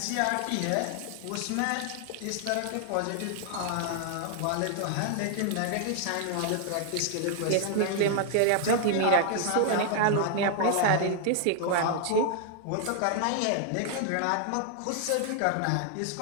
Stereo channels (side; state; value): both; different; correlation 0.00